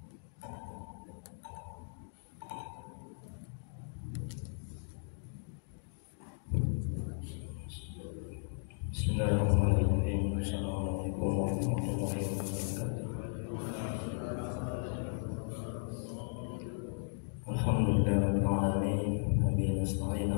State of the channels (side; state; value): right; silent; digital silence